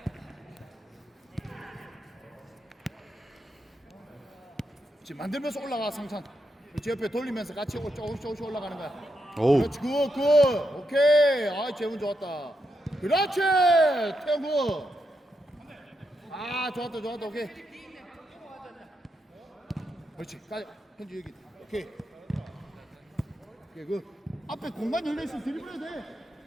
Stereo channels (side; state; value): both; normal; correlation 0.83